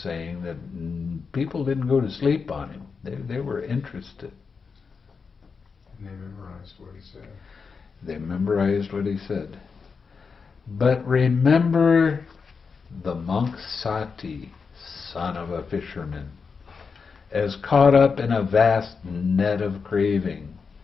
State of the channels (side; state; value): right; quieter; 5.3 dB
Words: that people didn't go to sleep on him. They were interested. And they memorized what he said. They memorized what he said. But remember the monk Sāti, son of a fisherman, as caught up in a vast net of craving,